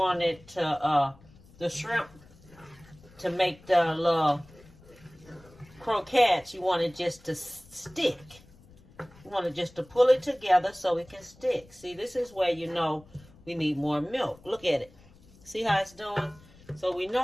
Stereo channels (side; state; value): left; noise; rumble, 25 dB below the sound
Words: to, the shrimp to make the little croquettes, you want it just to stick. You want it just to pull it together so it can stick. See, this is where you know we need more milk. Look at it. See how it's doing? So we